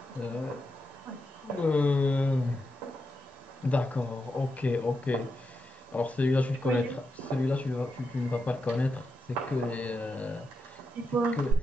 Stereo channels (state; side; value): normal; both; correlation 0.86